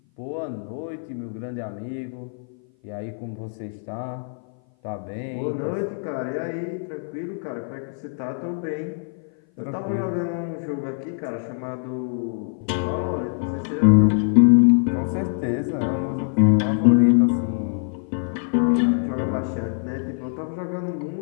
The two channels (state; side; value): silent; right; 57 dB below the other